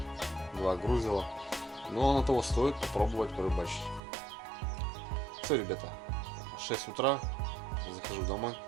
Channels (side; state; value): left; drops out; at 4.0 s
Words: 2 грузила. Но оно того стоит попробовать порыбачить. Все, ребята, 6 утра, захожу домой.